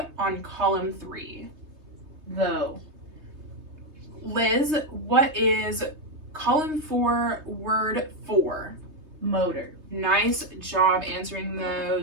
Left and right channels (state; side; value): late; left; 3.3 ms